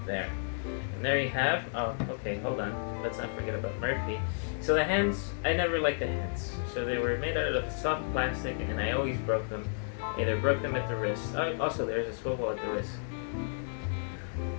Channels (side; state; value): right; silent; digital silence